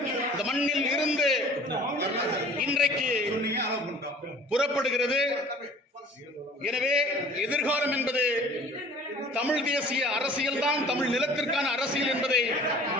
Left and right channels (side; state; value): both; normal; correlation 0.48